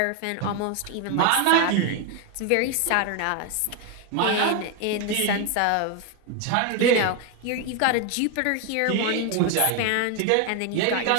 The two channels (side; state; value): both; different; correlation 0.01